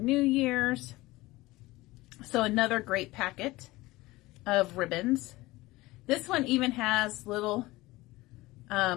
Year's. So another great packet of ribbons. This one even has little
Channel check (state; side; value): quieter; right; 19.8 dB